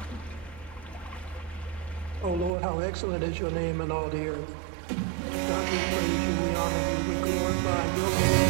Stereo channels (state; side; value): drops out; left; at 2.5 s